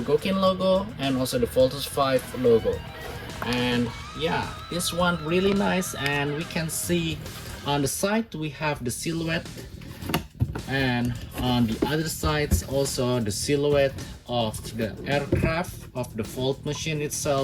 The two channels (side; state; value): both; identical; correlation 1.00